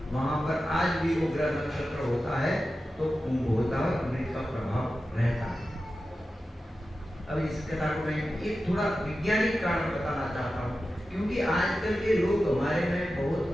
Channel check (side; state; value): both; normal; correlation 0.93